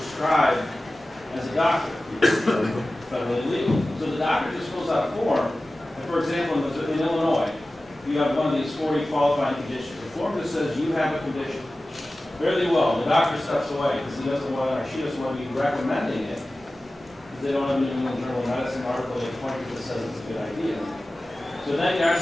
as a doctor. It's federally legal. So the doctor just fills out a form, and for example, in Illinois, you have one of these 40 qualifying conditions. The form just says you have a condition. Fairly well, the doctor steps away because he doesn't want to, or she doesn't want to be recommending it. Because they don't have a New England Journal of Medicine article they point to that says it's a good idea. So then there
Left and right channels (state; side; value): normal; both; correlation 0.96